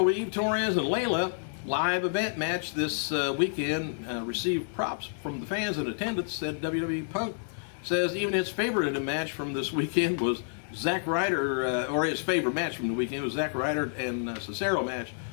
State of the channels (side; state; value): right; silent; digital silence